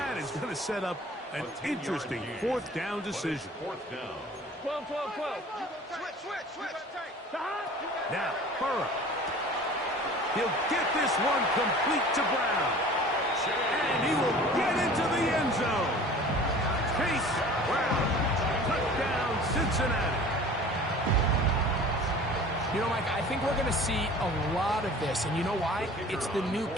is going to set up an interesting 4th down decision. 4th down. 12, 12, 12. Switch. Stop. Now, Burrow. He'll get this one complete to Brown. And he will get into the end zone. Chase Brown. Touchdown, Cincinnati. You know, Mike, I think we're going to see a lot of this, and you know why? It's the new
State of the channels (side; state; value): both; normal; correlation 0.44